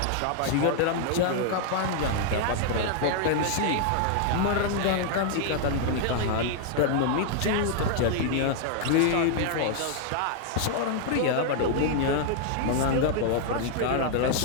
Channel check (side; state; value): both; different; correlation 0.00